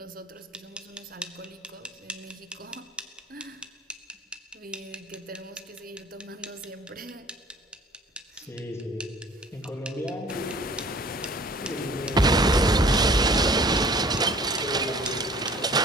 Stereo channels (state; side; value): normal; both; correlation 0.51